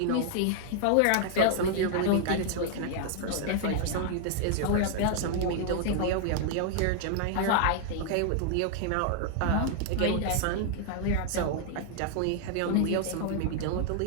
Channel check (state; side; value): different; both; correlation 0.00